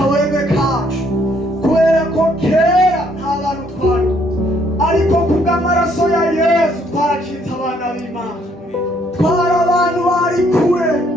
kacu, kubera ko kera nta bantu twari, ariko kubw'amaraso ya Yesu twaracitse abana b'Imana. Twari abantu bari kure,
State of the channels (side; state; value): both; normal; correlation 0.67